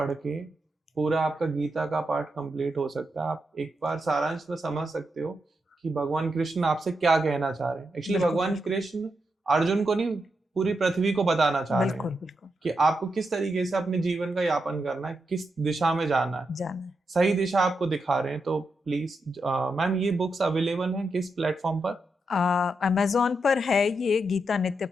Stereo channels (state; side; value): normal; both; correlation 0.85